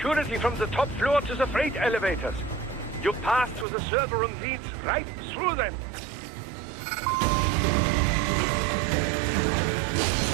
from the top floor to the freight elevators. You pass through the server room leads right through them.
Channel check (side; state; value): left; drops out; at 3.7 s